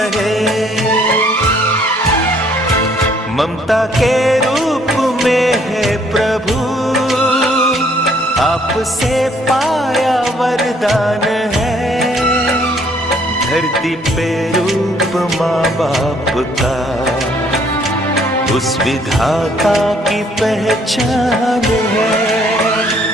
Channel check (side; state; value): both; normal; correlation 0.64